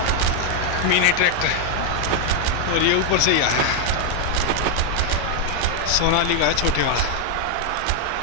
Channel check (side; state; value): both; different; correlation 0.00